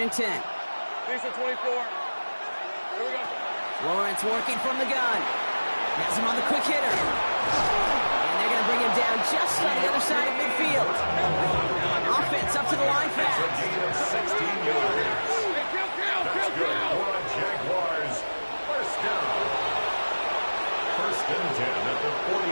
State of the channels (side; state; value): both; inverted; correlation -1.00